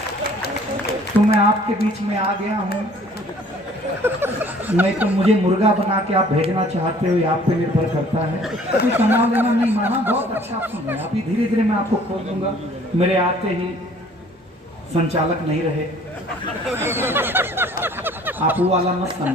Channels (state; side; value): normal; both; correlation 0.54